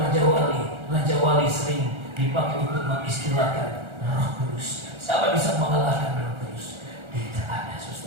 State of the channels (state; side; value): late; left; 1.4 ms